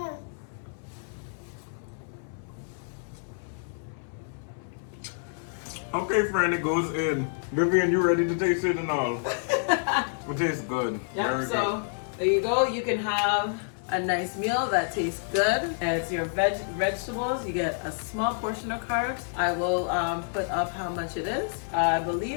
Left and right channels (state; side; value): silent; right; 58 dB below the other